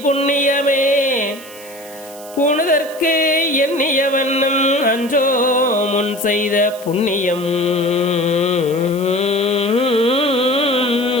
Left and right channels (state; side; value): noise; right; hiss, 18 dB below the sound